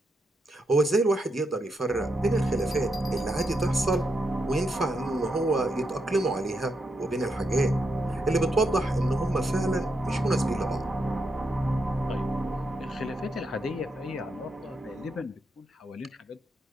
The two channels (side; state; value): both; normal; correlation 0.82